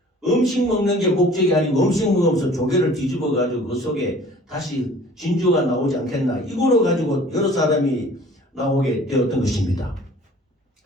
음식 먹는 게 목적이 아니고 음식 먹으면서 조개를 뒤집어 가지고 그 속에 다시 진주가 나오지 않겠나 이거로 가지고 여러 사람이 나오게 되었던 것입니다.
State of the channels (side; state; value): both; normal; correlation 0.49